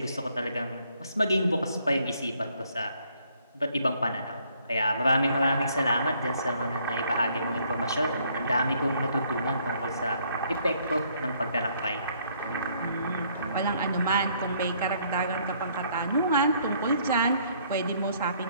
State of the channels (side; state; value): both; inverted; correlation -0.66